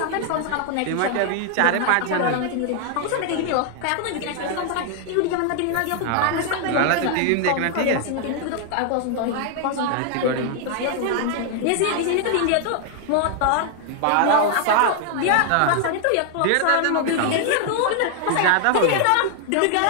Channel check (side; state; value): both; different; correlation 0.00